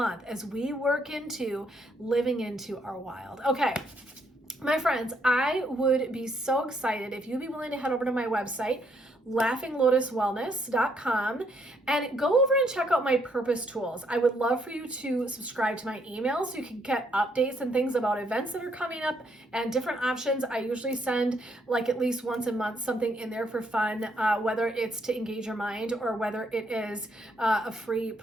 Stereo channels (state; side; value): normal; both; correlation 0.72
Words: as we work into living into our wild? Okay. My friends, I would be so excited if you'd be willing to head over to my website, laughinglotuswellness.com, and go over and check out my purpose tools. I would love for you to subscribe to my email so you can get updates and things about events that are coming up and different options. I usually send like at least once a month something in there for fun, whether it's to engage your mind or whether it is a free